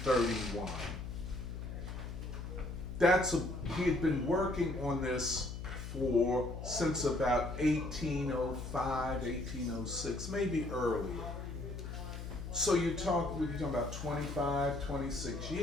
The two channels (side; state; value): left; noise; hum, 8 dB below the sound